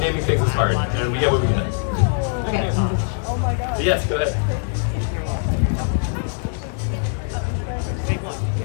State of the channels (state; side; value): silent; right; digital silence